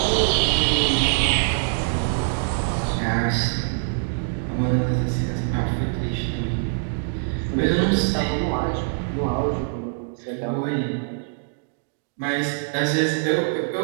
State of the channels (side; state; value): left; silent; digital silence